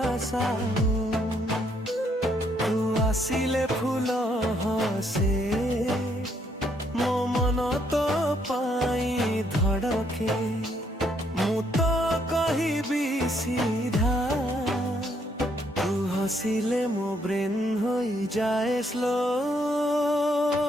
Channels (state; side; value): normal; both; correlation 0.71